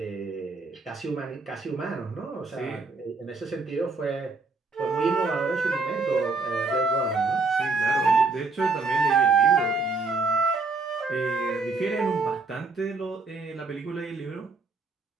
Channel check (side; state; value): left; quieter; 3.9 dB